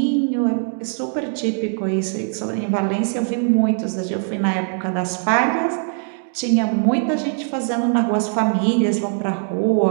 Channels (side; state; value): left; silent; 59 dB below the other